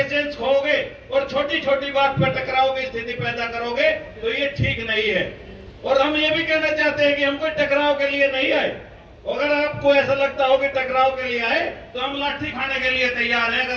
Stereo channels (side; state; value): both; identical; correlation 1.00